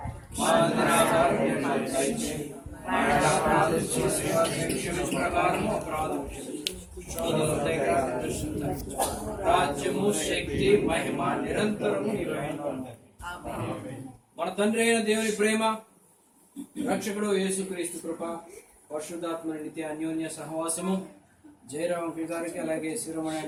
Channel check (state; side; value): identical; both; correlation 1.00